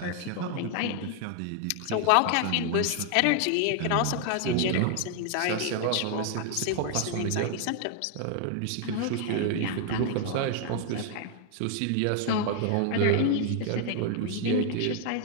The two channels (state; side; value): different; both; correlation 0.00